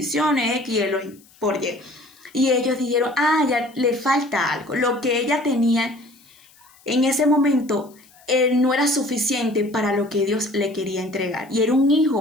X y por Y. Y ellos dijeron, ya le falta algo. Lo que ella tenía en ese momento no era suficiente para lo que Dios le quería entregar. Y era un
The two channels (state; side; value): noise; left; hiss, 28 dB below the sound